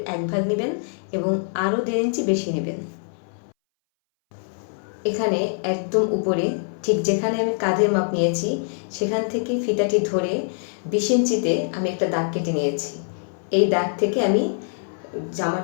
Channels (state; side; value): silent; right; 61 dB below the other